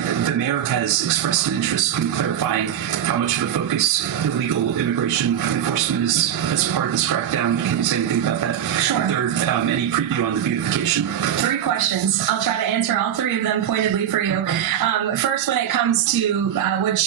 the mayor has expressed an interest in clarifying how much of a focus illegal immigration enforcement is as part of this crackdown. Can you say anything about that? Sure. Is there any preview on the beautification? 3 questions. I'll try to answer all 3 of them pointedly for you. First, when it comes to what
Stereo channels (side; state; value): left; quieter; 9.9 dB